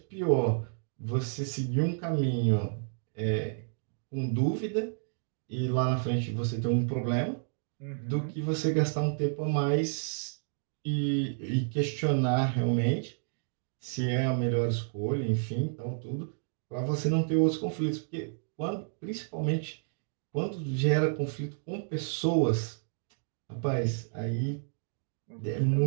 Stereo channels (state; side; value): silent; left; digital silence